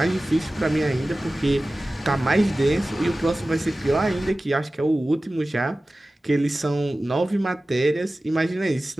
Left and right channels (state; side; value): normal; both; correlation 0.96